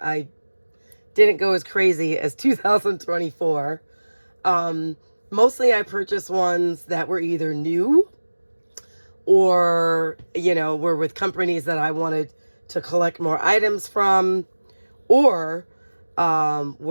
I didn't go as crazy as 2024. Mostly I purchased ones that were either new or, were with companies that I wanted to collect more items from, or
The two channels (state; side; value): inverted; both; correlation -1.00